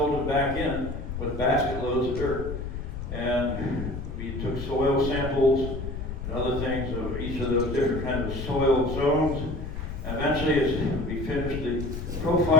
them back in with basket loads of dirt. And we took soil samples and other things of each of those different kinds of soil zones. Eventually, as we finished the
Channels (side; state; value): left; noise; rumble, 6 dB below the sound